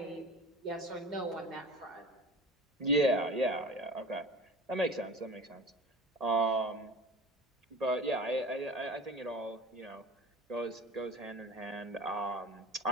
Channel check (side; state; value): both; normal; correlation 0.37